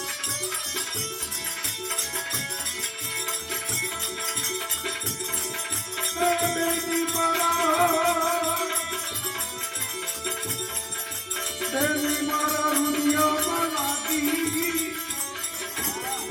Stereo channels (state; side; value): identical; both; correlation 1.00